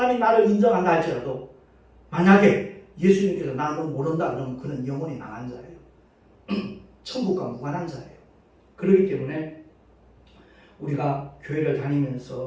나를 인정한다 할지라도 만약에 예수님께서 나 너 모른다 그러면 그는 영원히 망한 자예요. 천국과 무관한 자예요. 그렇기 때문에 우리가 교회를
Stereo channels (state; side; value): identical; both; correlation 1.00